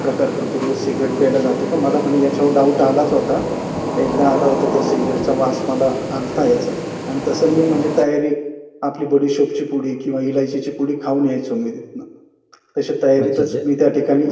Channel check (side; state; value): both; identical; correlation 1.00